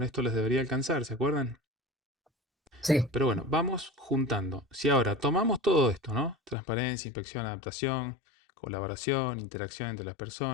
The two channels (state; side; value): drops out; right; at 6.6 s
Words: esto les debería alcanzar, ¿se acuerdan? Sí, Pero bueno, vamos juntando. Si ahora tomamos todo esto, ¿no? Transparencia, inspección, adaptación, colaboración, interacción entre las